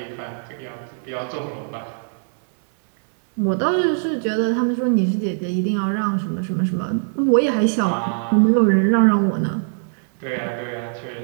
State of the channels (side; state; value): left; silent; digital silence